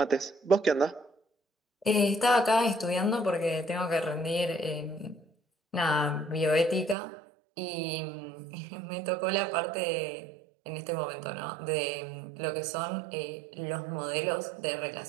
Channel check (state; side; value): drops out; left; at 7.0 s